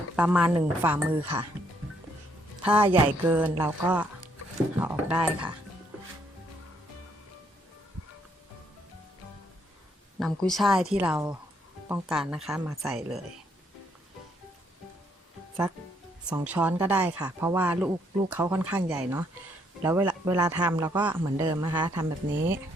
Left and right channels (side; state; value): both; normal; correlation 0.71